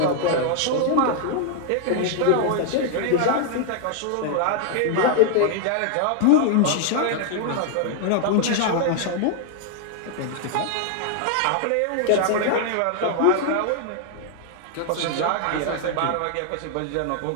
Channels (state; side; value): different; both; correlation 0.00